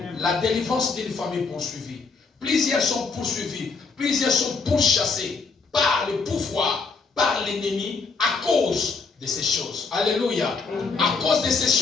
La délivrance d'une famille poursuivie. Plusieurs sont poursuivis, plusieurs sont pourchassés par le pouvoir, par l'ennemi, à cause de ces choses. Alléluia. À cause de ces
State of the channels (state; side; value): quieter; right; 4.5 dB